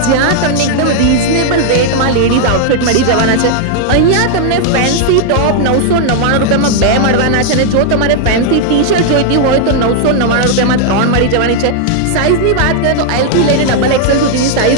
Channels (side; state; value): both; different; correlation 0.00